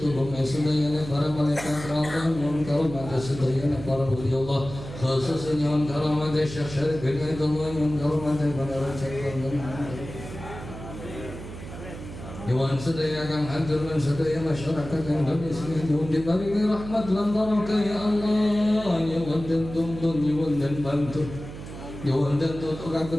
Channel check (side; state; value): right; noise; hum, 12 dB below the sound